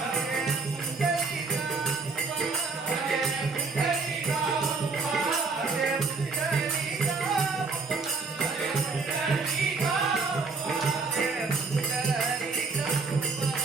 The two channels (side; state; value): left; quieter; 4.2 dB